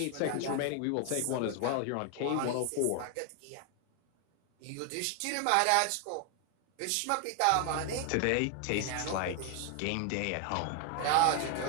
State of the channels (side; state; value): both; different; correlation 0.00